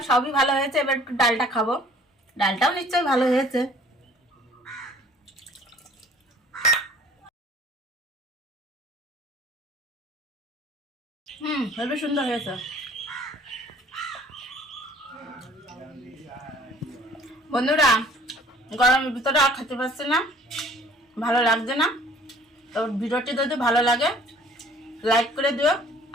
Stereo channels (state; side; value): normal; both; correlation 0.53